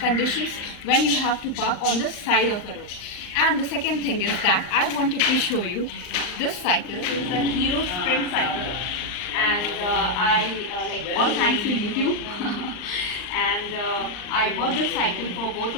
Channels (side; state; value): right; late; 39 ms